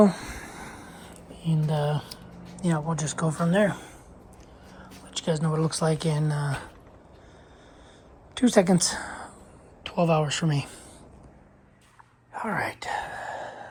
and we'll just go from there. you guys know what it looks like in 2 seconds. 12 hours for me. All right.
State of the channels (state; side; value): identical; both; correlation 1.00